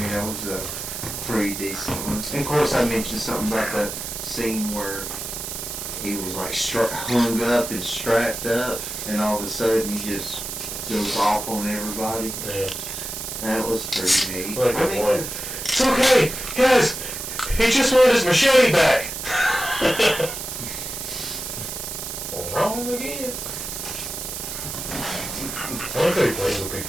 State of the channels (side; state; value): right; noise; hiss, 6 dB below the sound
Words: that was a pretty decent one. And of course, I mentioned something about the scene where he was like hung up and strapped up, and all of a sudden he just goes off on everybody. Yeah. That was pretty neat. Like I that mean, one. It's okay, guys. He just wanted his machete back. Wrong again. I like how he plays with